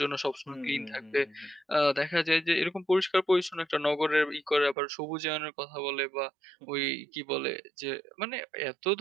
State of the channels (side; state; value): left; drops out; at 4.8 s